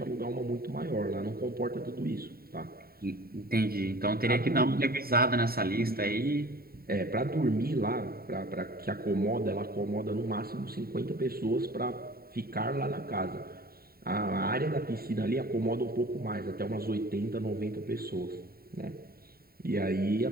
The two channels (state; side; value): late; left; 0.44 ms